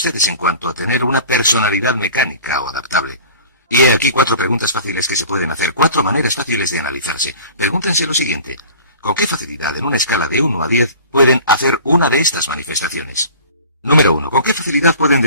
en cuanto a tener una personalidad mecánica o adaptable. Y he aquí 4 preguntas fáciles que se pueden hacer, 4 maneras fáciles de analizarse. Pregúntense lo siguiente: ¿con qué facilidad en una escala de 1 a 10 pueden hacer una de estas manifestaciones? Número 1. ¿Con qué facilidad pueden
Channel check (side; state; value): both; inverted; correlation -0.42